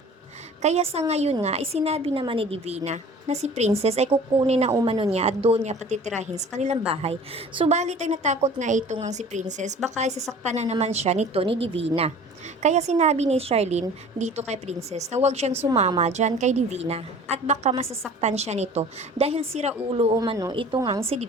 Kaya sa ngayon nga, isinabi naman ni Divina na si Princess ay kukunin na umano niya at doon niya patitirahin sa kanilang bahay. Subalit ay natakot nga ito ngang si Princess baka isasaktan na naman siya nito ni Divina. Kaya sinabi ni Charlene dito kay Princess na huwag siyang sumama dyan kay Divina at baka masasaktan siya nito dahil sira ulo umano ito ngang si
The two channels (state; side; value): normal; both; correlation 0.45